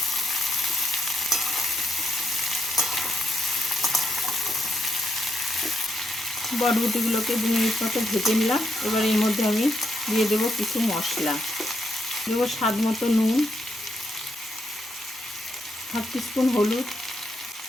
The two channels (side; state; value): both; normal; correlation 0.80